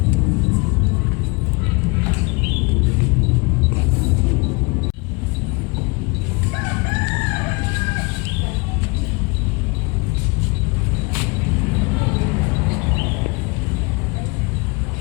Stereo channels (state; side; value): quieter; right; 28.5 dB